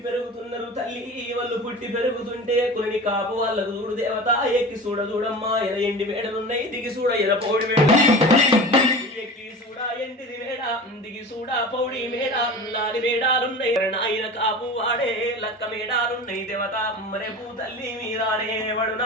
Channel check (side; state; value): both; normal; correlation 0.35